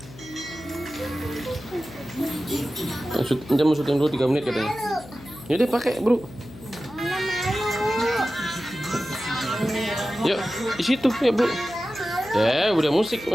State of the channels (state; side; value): noise; left; hum, 18 dB below the sound